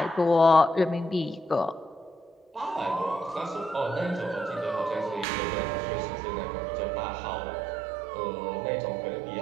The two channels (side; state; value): left; drops out; at 5.2 s